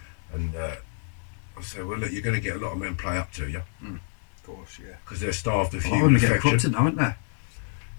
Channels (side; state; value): right; silent; digital silence